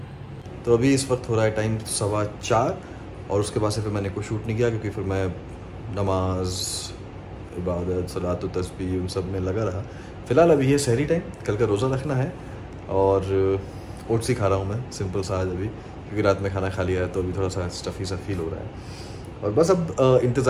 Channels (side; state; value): both; identical; correlation 1.00